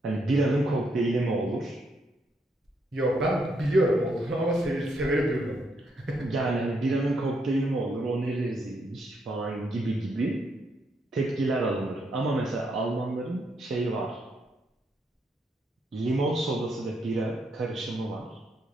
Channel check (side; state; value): both; normal; correlation 0.76